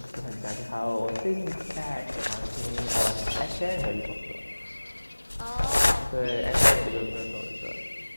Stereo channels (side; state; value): both; inverted; correlation -1.00